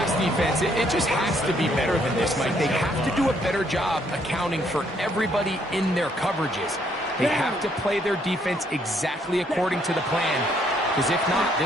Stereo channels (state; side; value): normal; both; correlation 0.69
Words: defense, it just has to be better than this, Mike. They have to do a better job accounting for everybody in their coverages. They have to play their defense exactly according to the plan, because if not,